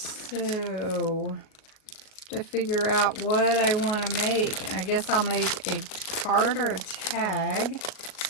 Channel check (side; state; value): right; late; 38 ms